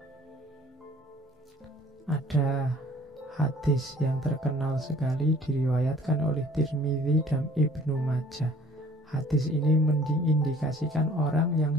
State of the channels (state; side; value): normal; both; correlation 0.54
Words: Ada hadis yang terkenal sekali diriwayatkan oleh Tirmidzi dan Ibnu Majah. Hadis ini mengindikasikan orang yang